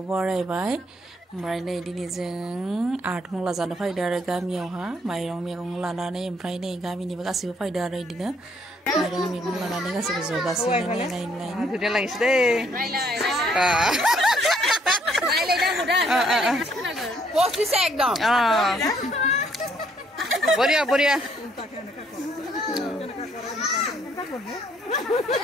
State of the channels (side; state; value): both; normal; correlation 0.67